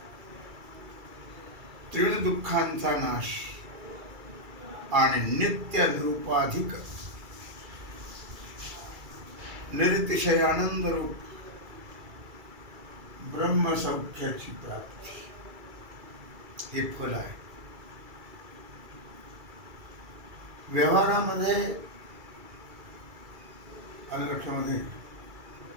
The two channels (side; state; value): left; late; 2.3 ms